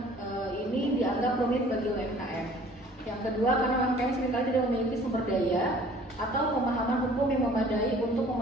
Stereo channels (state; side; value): normal; both; correlation 0.52